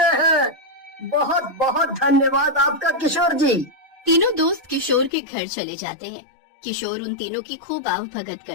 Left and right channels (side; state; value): right; drops out; at 5.1 s